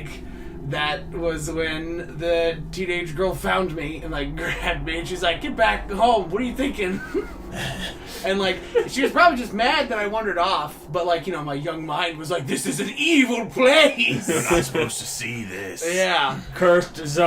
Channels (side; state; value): both; identical; correlation 1.00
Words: that was when the teenage girl found me and like grabbed me, and she's like, "Get back home, what are you thinking?" And like, she was probably just mad that I wandered off, but like, my young mind was like, this is an evil place. You're not supposed to see this. Yeah. Cursed